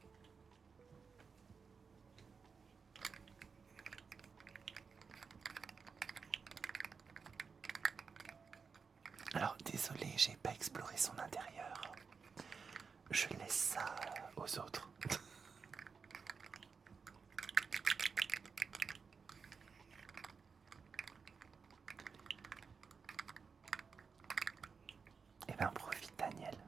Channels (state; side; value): quieter; left; 5.4 dB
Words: Alors, désolé, j'ai pas exploré son intérieur. Je laisse ça aux autres. Eh ben, profite, Daniel,